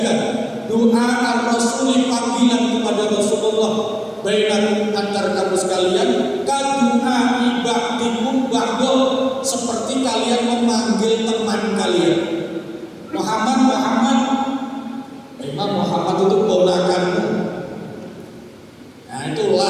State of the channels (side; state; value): both; identical; correlation 1.00